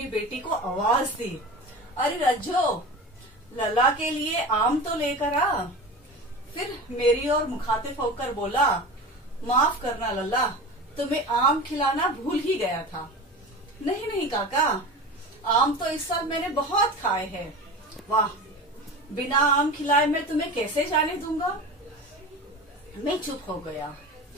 बेटी को आवाज दी, अरे रज्जो, लल्ला के लिए आम तो लेकर आ। फिर मेरी ओर मुखातिब होकर बोला, माफ करना लल्ला, तुम्हें आम खिलाना भूल ही गया था। नहीं नहीं काका, आम तो इस साल मैंने बहुत खाए हैं। वाह, बिना आम खिलाए मैं तुम्हें कैसे जाने दूंगा। मैं चुप हो गया।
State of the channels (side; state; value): both; normal; correlation 0.31